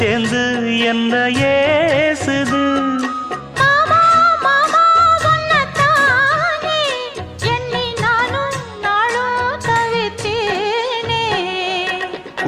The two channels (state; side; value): identical; both; correlation 1.00